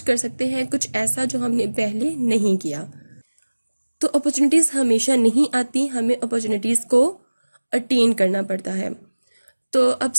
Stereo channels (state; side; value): inverted; both; correlation -1.00